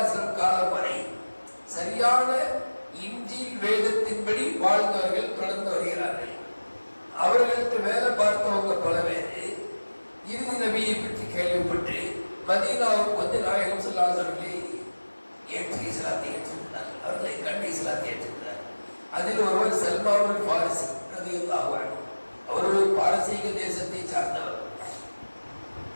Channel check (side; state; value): both; inverted; correlation -1.00